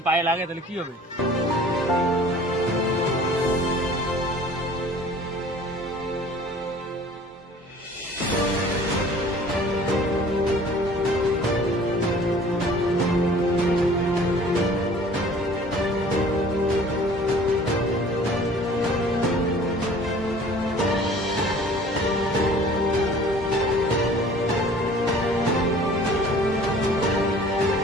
পায়ে লাগে তাহলে কি হবে?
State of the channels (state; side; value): normal; both; correlation 0.49